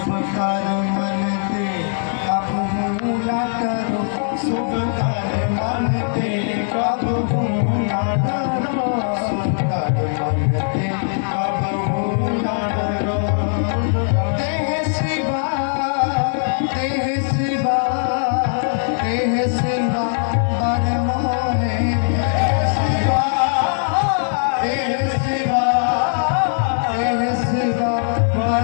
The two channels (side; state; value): right; silent; digital silence